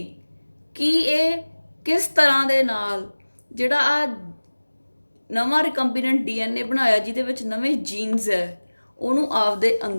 ਕਿ ਇਹ ਕਿਸ ਤਰ੍ਹਾਂ ਦੇ ਨਾਲ ਜਿਹੜਾ ਆ ਨਵਾਂ ਰਿਕੰਬੀਨੈਂਟ ਡੀਐਨਏ ਬਣਾਇਆ ਜਿਹਦੇ ਵਿੱਚ ਨਵੇਂ ਜੀਨਸ ਹੈ ਉਹਨੂੰ ਆਪਦੇ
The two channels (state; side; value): inverted; both; correlation -1.00